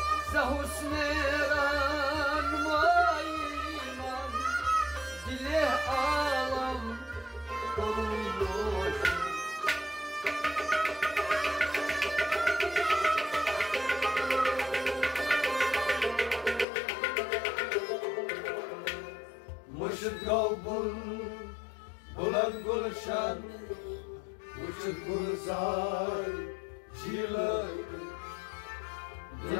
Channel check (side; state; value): right; drops out; at 16.7 s